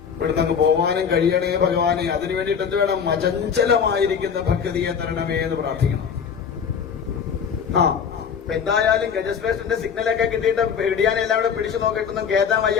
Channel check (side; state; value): right; quieter; 7.0 dB